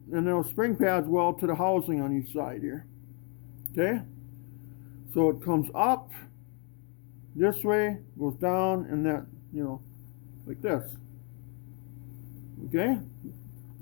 and those spring pads weld to the housing on each side here. Okay, so it comes up this way, goes down, and that, like this. Okay,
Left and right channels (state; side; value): quieter; right; 37.6 dB